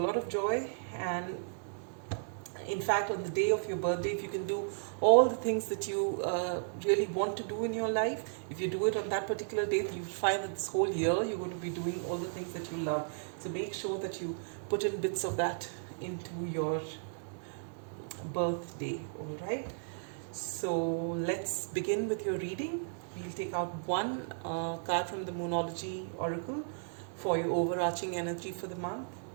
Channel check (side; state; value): left; silent; digital silence